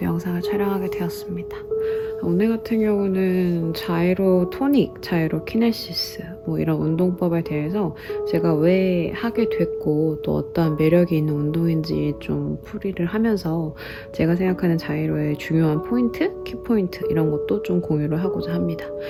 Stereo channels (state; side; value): identical; both; correlation 1.00